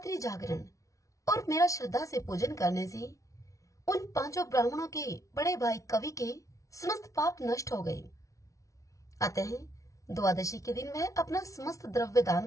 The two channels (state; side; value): late; right; 0.16 ms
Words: जागरण और मेरा श्रद्धा से पूजन करने से उन 5 ब्राह्मणों के बड़े भाई कवि के समस्त पाप नष्ट हो गए। अतः द्वादशी के दिन वह अपना समस्त द्रव्य दान